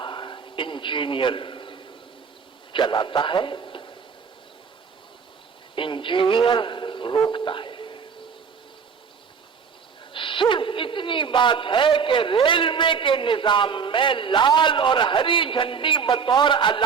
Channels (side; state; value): left; quieter; 6.2 dB